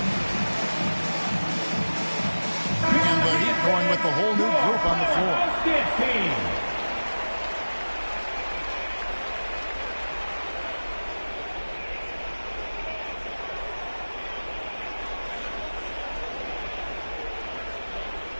And the Heat going with the whole new group on the floor. Powerhouse Dance Team.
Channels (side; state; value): both; inverted; correlation -1.00